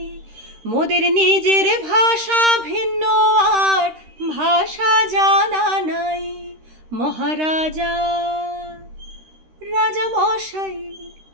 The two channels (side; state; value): left; late; 13 ms